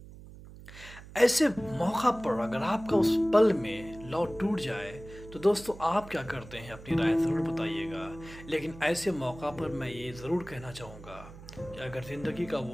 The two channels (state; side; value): noise; right; hum, 17 dB below the sound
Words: ایسے موقع پر اگر آپ کا اس پل میں لو ٹوٹ جائے تو دوستو آپ کیا کرتے ہیں؟ اپنی رائے ضرور بتائیے گا۔ لیکن ایسے موقع پر میں یہ ضرور کہنا چاہوں گا کہ اگر زندگی کا